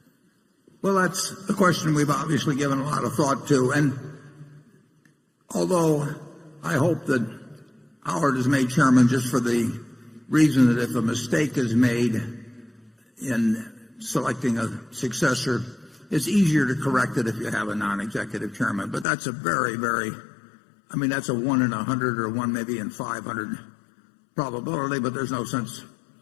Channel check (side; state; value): right; drops out; at 19.1 s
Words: Well, that's a question we've obviously given a lot of thought to, and although I hope that Howard is made chairman just for the reason that if a mistake is made in selecting a successor, it's easier to correct it if you have a non-executive chairman. But that's a very, that's a 1 in 100 or 1 maybe in 500 probability, but there's no sense